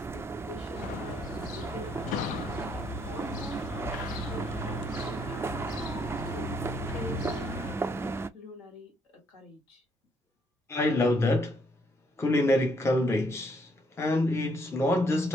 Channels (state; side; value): normal; both; correlation 0.70